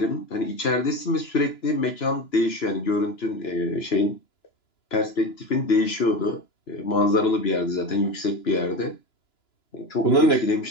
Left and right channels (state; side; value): late; right; 2.9 ms